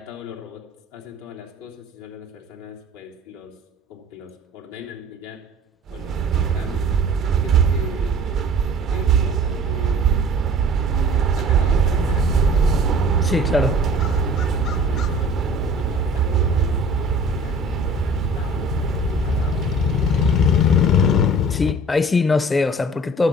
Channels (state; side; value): normal; both; correlation 0.46